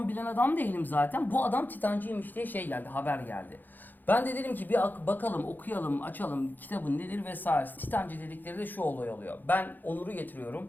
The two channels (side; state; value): right; late; 0.087 ms